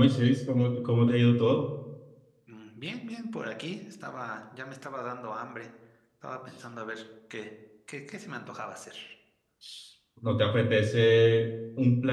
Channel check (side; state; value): both; identical; correlation 1.00